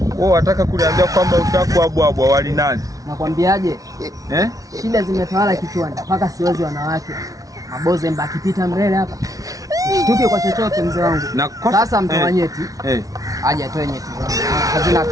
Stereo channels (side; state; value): left; late; 0.17 ms